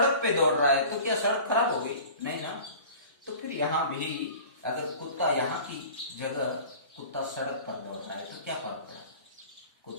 पे दौड़ रहा है, तो क्या सड़क खराब हो गई? नहीं ना। तो फिर यहां भी अगर कुत्ता, यहाँ की जगह कुत्ता सड़क पर दौड़ रहा है, तो क्या फर्क पड़ा?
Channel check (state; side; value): inverted; both; correlation -0.41